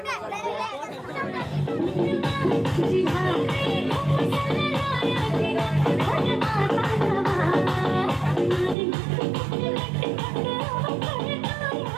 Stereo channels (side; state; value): left; drops out; at 8.8 s